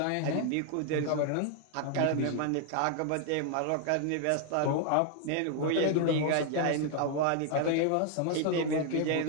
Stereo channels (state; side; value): different; both; correlation 0.00